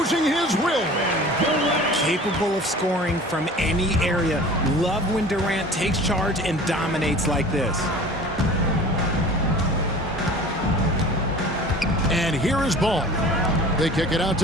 his will. Capable of scoring from any area. Love when Durant takes charge and dominates like this. And here is Ball. They kick it out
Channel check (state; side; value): normal; both; correlation 0.42